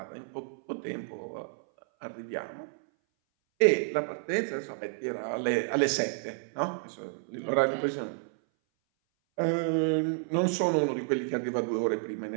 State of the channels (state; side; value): silent; left; 58 dB below the other